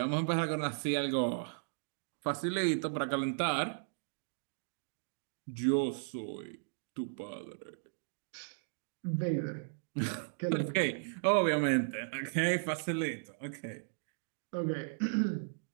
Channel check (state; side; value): silent; left; digital silence